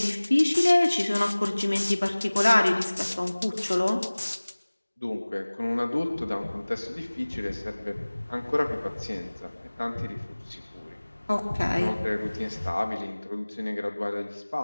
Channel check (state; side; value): inverted; both; correlation -1.00